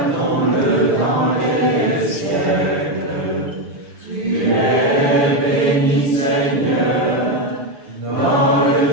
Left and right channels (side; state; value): left; late; 6.9 ms